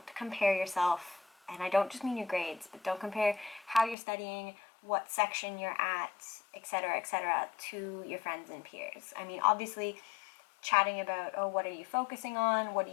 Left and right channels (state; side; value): drops out; right; at 4.0 s